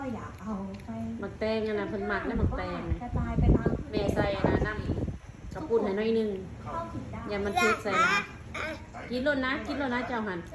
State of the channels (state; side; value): identical; both; correlation 1.00